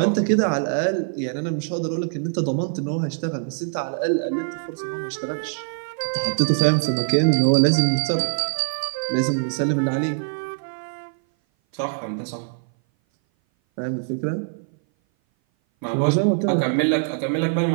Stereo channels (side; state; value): left; silent; 58 dB below the other